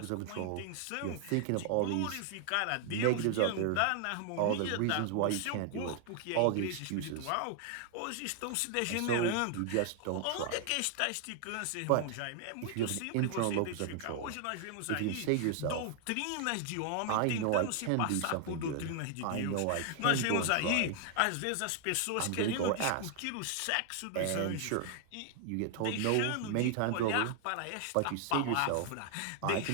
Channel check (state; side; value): different; both; correlation 0.00